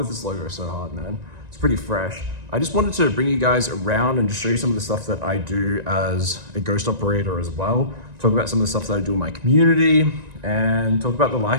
this logo so hard, man. It's pretty fresh. I just wanted to bring you guys around and just show you some of the stuff that I do as a ghost operator as well. Talk about some of the stuff that I do in my community and talk about the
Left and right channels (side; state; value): left; late; 1.9 ms